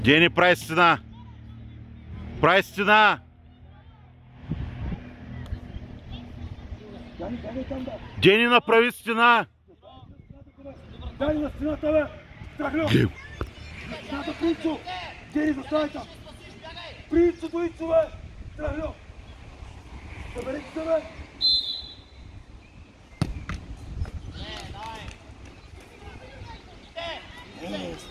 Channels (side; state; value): both; identical; correlation 1.00